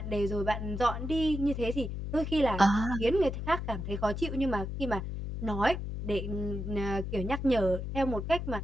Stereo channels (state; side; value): noise; left; hum, 5 dB below the sound